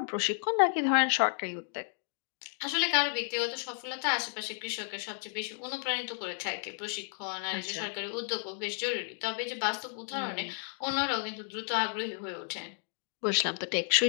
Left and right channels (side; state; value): right; silent; digital silence